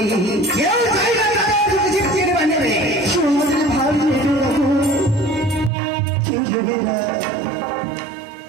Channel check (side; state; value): left; drops out; at 5.7 s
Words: কেউ চাই না তাদের যদি জিতিয়ে নেবে, কেউ আমাদের ভাত দেবে না, কেউ দেবে না।